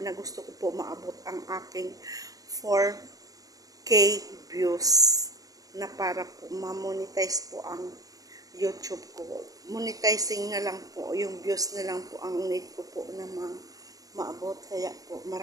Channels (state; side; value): late; left; 0.17 ms